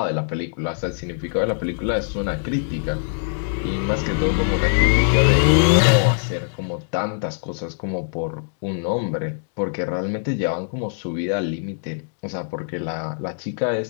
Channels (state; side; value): silent; right; digital silence